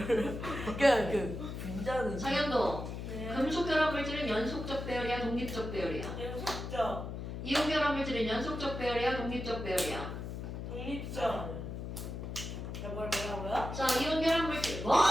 그 분자는 장현도, 네. 금속결합 물질은 연속적 배열이야, 독립적 배열이야? 연속적, 이온결합 물질은 연속적 배열이야, 독립적 배열이야? 독립적. 뭐라고요? 자, 이온결합 물질. 뭐?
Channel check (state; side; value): noise; left; hum, 6 dB below the sound